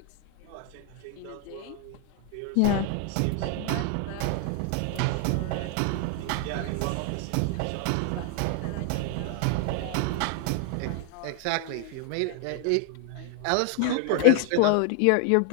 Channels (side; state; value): both; different; correlation 0.00